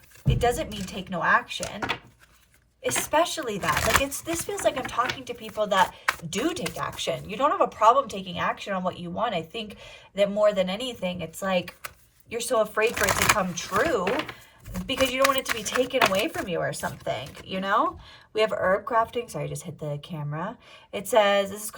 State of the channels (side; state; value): both; identical; correlation 1.00